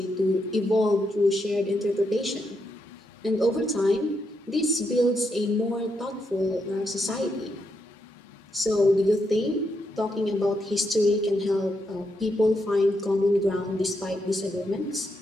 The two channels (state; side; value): normal; both; correlation 0.81